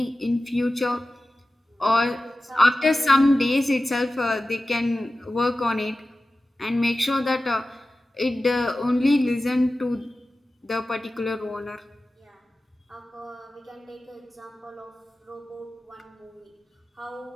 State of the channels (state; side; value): normal; both; correlation 0.95